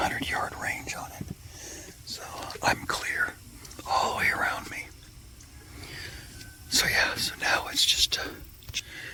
range on it. So I'm clear all the way around me. So yeah, so now it's just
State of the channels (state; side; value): identical; both; correlation 1.00